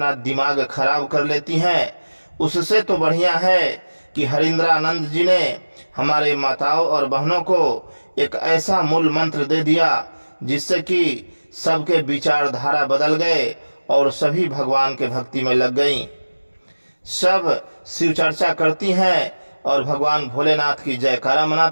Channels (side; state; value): both; inverted; correlation -1.00